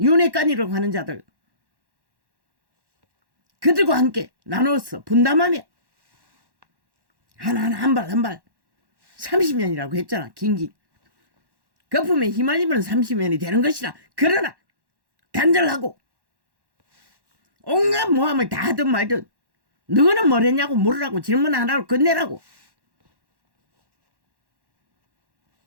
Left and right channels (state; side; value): late; left; 1.1 ms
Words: 하는 자들, 그들과 함께 나누어서 분담하며 하나하나 한 발 30년이라고 했잖아. 긴긴 거품에 휘말리면 30년이 되는 것이라. 그러나 단절하고 온갖 모함을 다 하든 말든 너는 뭘 했냐고 물으라고. 질문 하나로 끝내라고.